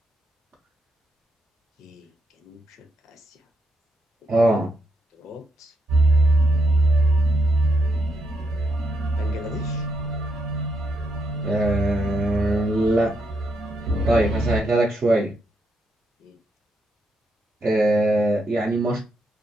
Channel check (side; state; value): both; normal; correlation 0.79